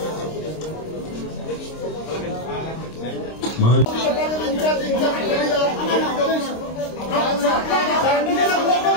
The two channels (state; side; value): late; right; 26 ms